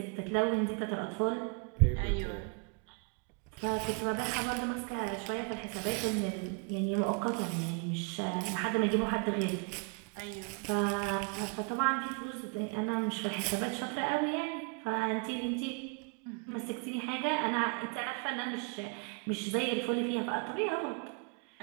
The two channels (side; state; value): left; quieter; 35.2 dB